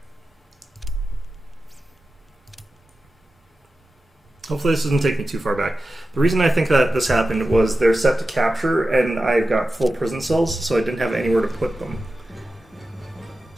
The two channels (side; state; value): both; normal; correlation 0.93